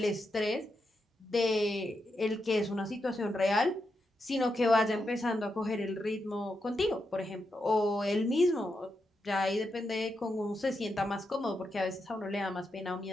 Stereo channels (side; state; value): both; normal; correlation 0.85